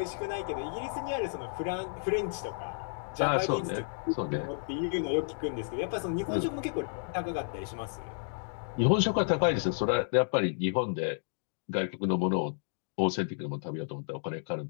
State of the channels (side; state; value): right; silent; digital silence